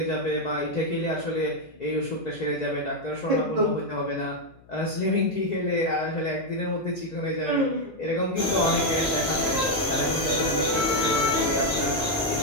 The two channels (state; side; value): noise; left; hum, 26 dB below the sound